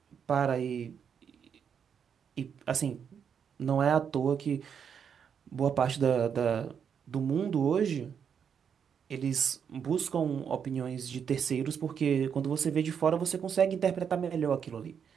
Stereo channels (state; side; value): quieter; left; 7.4 dB